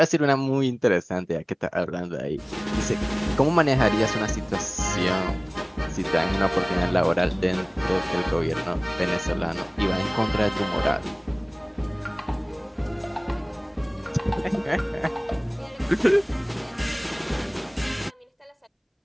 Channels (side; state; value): both; identical; correlation 1.00